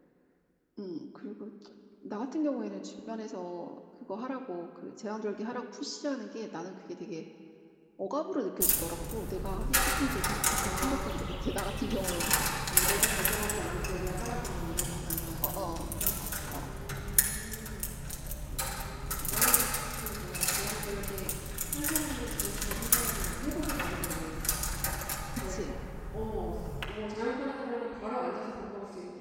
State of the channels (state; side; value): identical; both; correlation 1.00